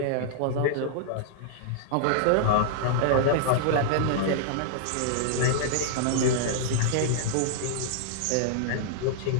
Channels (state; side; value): different; both; correlation -0.01